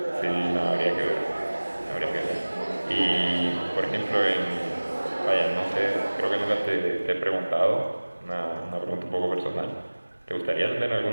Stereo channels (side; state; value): both; inverted; correlation -1.00